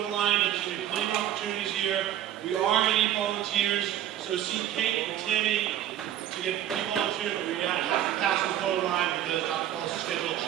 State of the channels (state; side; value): quieter; left; 11.5 dB